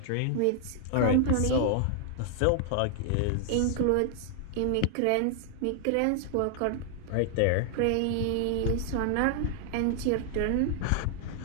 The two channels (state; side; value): different; both; correlation 0.00